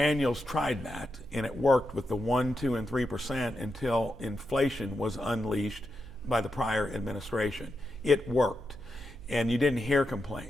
tried that, and it worked with the 1, 2, and 3% until inflation was unleashed by the prior administration. It worked, and you didn't hear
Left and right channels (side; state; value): right; noise; hum, 18 dB below the sound